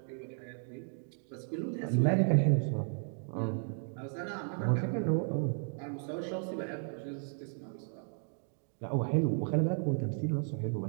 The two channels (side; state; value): left; silent; 55 dB below the other